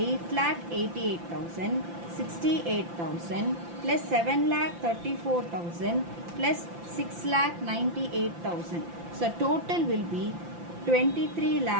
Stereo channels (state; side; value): late; left; 5.8 ms